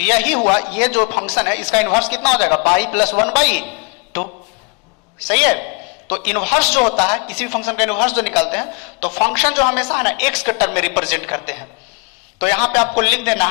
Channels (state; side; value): quieter; right; 31.5 dB